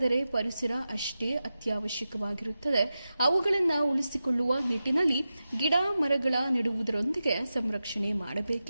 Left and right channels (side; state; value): both; inverted; correlation -0.92